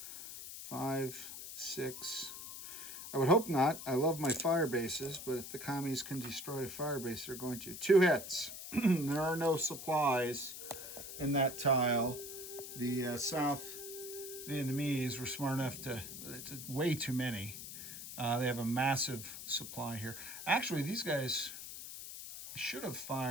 5, 6. I would hope not. I love my fire bases, but if the commies can destroy a fire base, they're going to. 2 hits. There are no supplies in that tile. The South Vietnamese were smart enough to, it's way too many. They have a massive supply here. Actually, these guys should have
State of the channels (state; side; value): noise; left; hiss, 10 dB below the sound